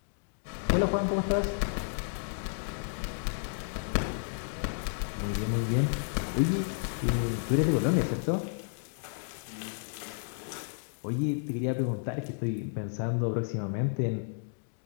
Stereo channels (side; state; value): right; silent; digital silence